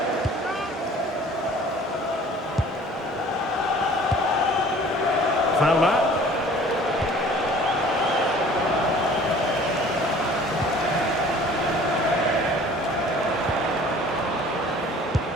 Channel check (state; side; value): normal; both; correlation 0.49